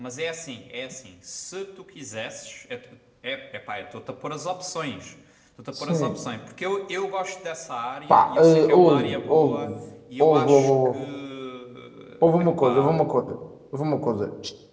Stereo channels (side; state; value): both; identical; correlation 1.00